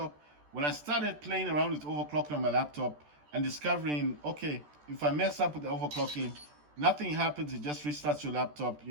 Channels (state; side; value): late; left; 14 ms